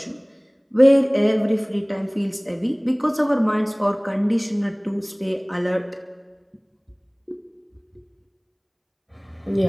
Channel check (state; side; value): identical; both; correlation 1.00